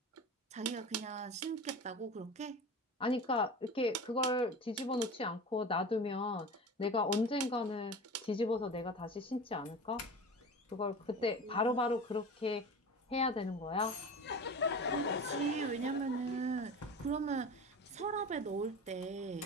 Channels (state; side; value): normal; both; correlation 0.33